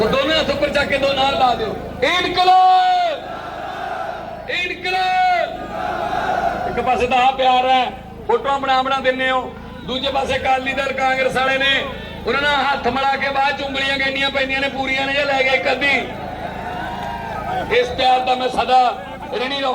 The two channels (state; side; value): identical; both; correlation 1.00